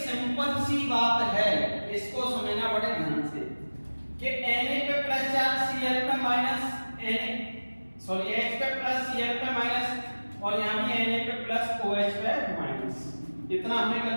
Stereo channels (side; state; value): both; inverted; correlation -1.00